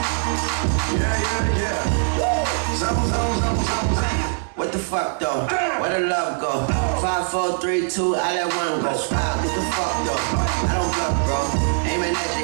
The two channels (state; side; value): silent; left; 58 dB below the other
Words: What the fuck though? Where the love go? 5, 4, 3, 2, I let one go. Wow, get the fuck though? I don't bluff, bro. Aiming at